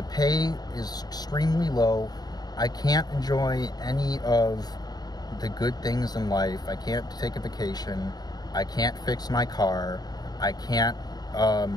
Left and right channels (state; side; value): late; right; 0.19 ms